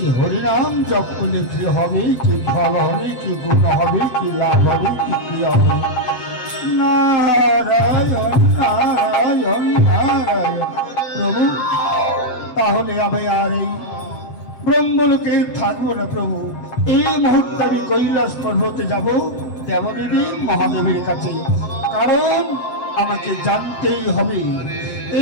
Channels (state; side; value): late; right; 7.9 ms